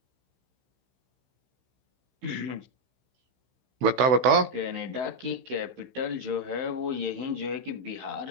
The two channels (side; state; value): left; late; 16 ms